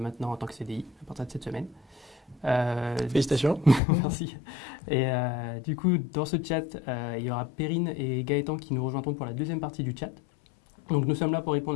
en tant que CDI à partir de cette semaine. Félicitations. Merci. Et du coup, dans ce chat, il y aura Perrine et Gaëtan qui nous rejoindront pour la deuxième partie du chat. Donc nous sommes là pour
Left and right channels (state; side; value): drops out; right; at 3.8 s